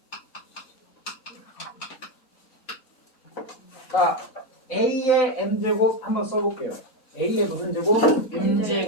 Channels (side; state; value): both; normal; correlation 0.09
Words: 자, A의 M제곱 한번 써볼게요. A의 무슨 제곱?